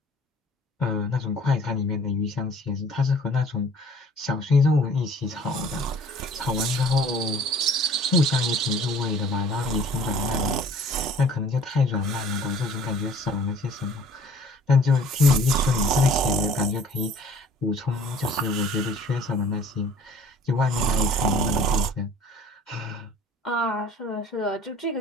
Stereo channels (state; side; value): normal; both; correlation 0.51